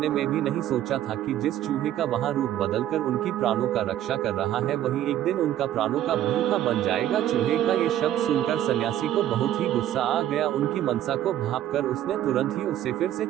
में भी नहीं सोचा था कि जिस चूहे का वहां रूप बदलकर उनकी प्राणों का रक्षा कर रहा है वही एक दिन उनका प्राणों का भूखा बन जाएगा। चूहे का ये शब्द सुनकर सन्यासी को बहुत ही गुस्सा आ गया। उनकी मनसा को भांपकर उसने तुरंत ही उसे फिर से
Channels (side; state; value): left; quieter; 12.1 dB